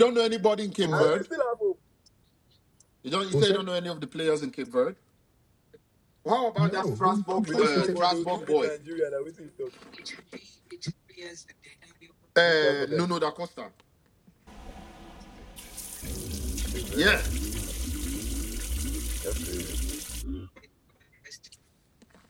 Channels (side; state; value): both; identical; correlation 1.00